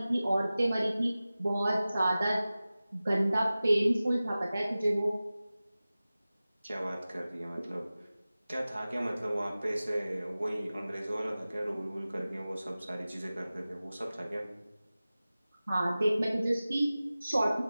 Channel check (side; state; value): both; inverted; correlation -0.97